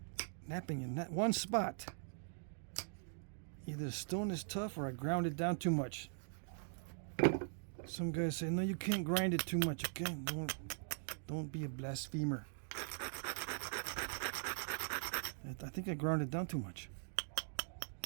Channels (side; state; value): left; silent; digital silence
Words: napping in that one spot. Either the stone is tough or I ground it down too much. Some guys say, no, you can't grind it too much, okay? Don't be a blasphemer. I think I ground it down too much.